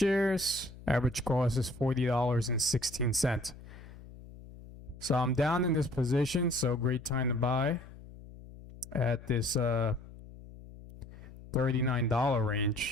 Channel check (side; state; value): left; noise; hum, 18 dB below the sound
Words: Average cost is $40.16. So I'm down in this position. So great time to buy at this $39